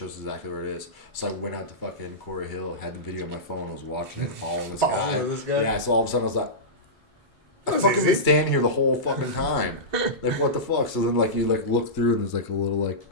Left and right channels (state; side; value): normal; both; correlation -0.15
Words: exactly where it is. So I went out to fucking Quarry Hill, had the video on my phone, I was watching it, following this guy. Yeah, so all of a sudden I was like, I fucking been standing here the whole fucking time. Like, what the fuck? So then, like, you, like, look through and there's, like, a little, like,